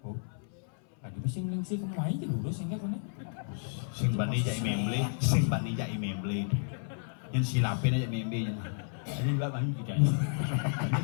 Oh. Ada bising sih kemain aja dulu sehingga kan Sing bani jai memble, sing bani jai memble. Yang silapin aja memble. Ini enggak bani kita.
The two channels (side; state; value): right; silent; 56 dB below the other